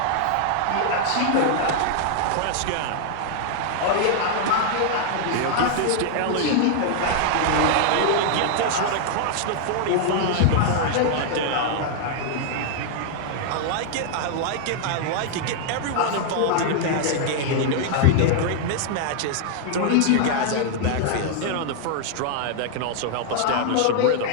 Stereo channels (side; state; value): both; different; correlation 0.00